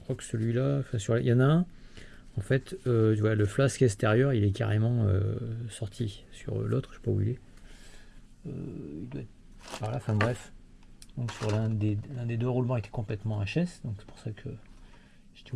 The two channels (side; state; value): both; identical; correlation 1.00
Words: que celui-là, il y en a un. En fait, tu vois, le flasque extérieur, il est carrément sorti. Sur l'autre, je sais pas où il est. Il doit être par là. Enfin bref. Donc sur l'un des deux roulements était complètement HS. Donc c'est pour ça que j'étais